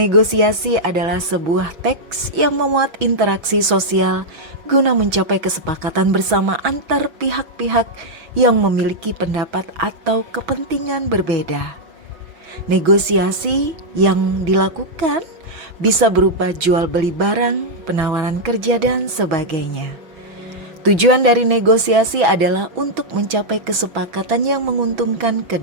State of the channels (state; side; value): late; left; 6.1 ms